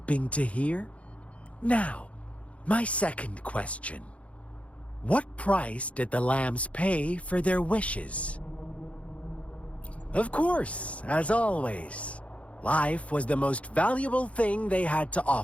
to hear? Now, my second question. What price did the lambs pay for their wishes? Of course, as always, life was the most valuable thing they had to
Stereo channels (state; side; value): late; right; 0.064 ms